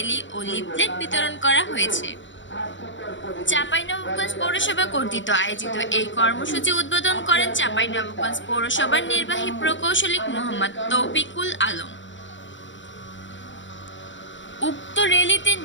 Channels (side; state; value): right; late; 0.54 ms